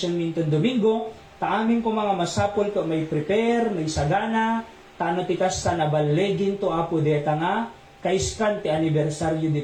minton Domingo, taamin ko mga masapol ko may prepare, may sagana, tano tikas sa nabalegin to Apo deta nga, kaiskan ti anibersaryo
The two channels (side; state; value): both; identical; correlation 1.00